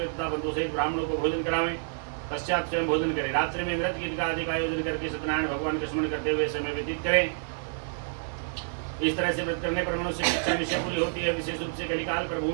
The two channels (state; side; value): silent; left; 59 dB below the other